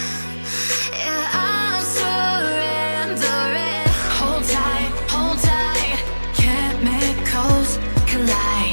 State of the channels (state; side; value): inverted; both; correlation -1.00